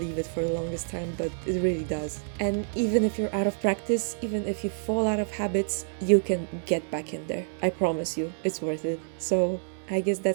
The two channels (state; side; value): silent; left; digital silence